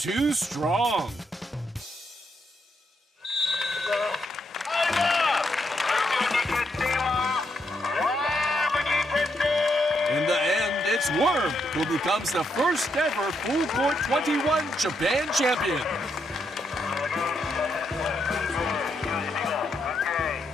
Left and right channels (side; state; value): both; normal; correlation 0.79